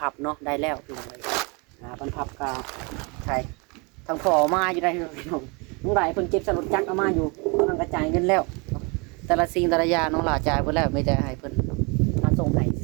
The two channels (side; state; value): left; quieter; 30.2 dB